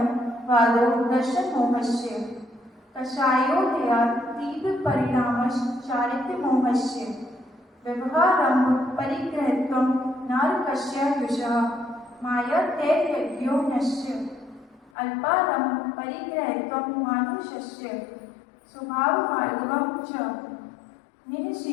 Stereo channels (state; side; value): drops out; right; at 14.9 s